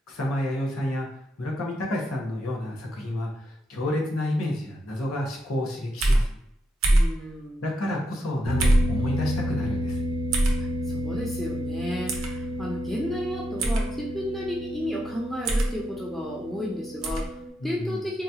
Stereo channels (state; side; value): normal; both; correlation 0.83